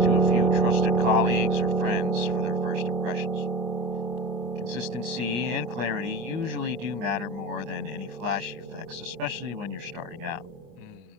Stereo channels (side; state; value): left; late; 25 ms